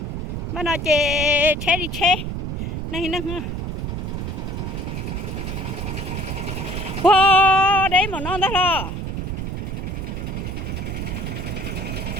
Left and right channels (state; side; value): noise; right; rumble, 4 dB below the sound